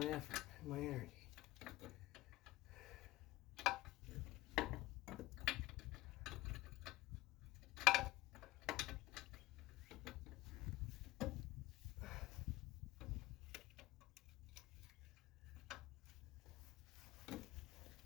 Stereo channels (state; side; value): quieter; right; 17.1 dB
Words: effort and my energy.